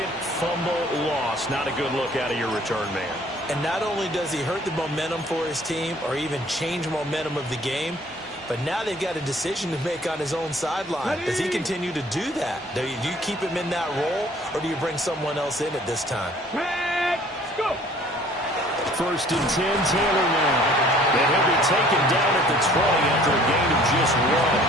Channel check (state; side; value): normal; both; correlation 0.55